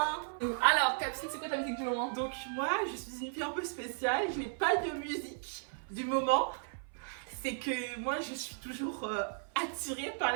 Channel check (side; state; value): left; silent; 54 dB below the other